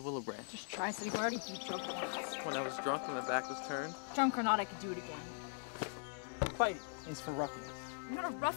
willow branch. Just try, so you've already beat drunk once. When I was drunk and my back was turned. Drunk or not, I could do it again. Fighting is for ruffians. You're not a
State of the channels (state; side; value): silent; right; digital silence